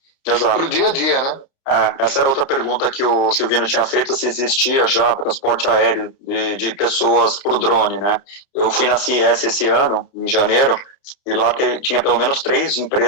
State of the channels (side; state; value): right; late; 30 ms